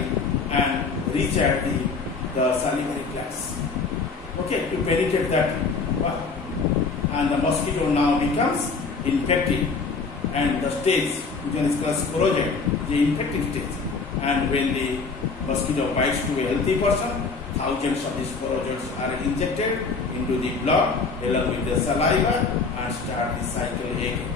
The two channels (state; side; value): quieter; right; 4.5 dB